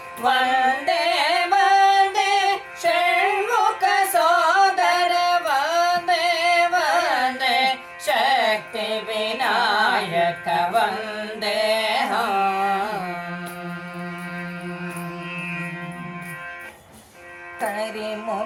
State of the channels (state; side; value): identical; both; correlation 1.00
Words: ವಂದೇ ವಂದೇ ಷಣ್ಮುಖ ಸೋದರ ವಂದೇ ವಂದೇ ಶಕ್ತಿ ವಿನಾಯಕ ವಂದೇಹಂ